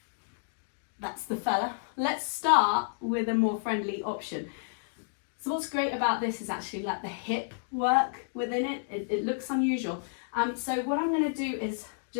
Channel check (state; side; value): silent; right; digital silence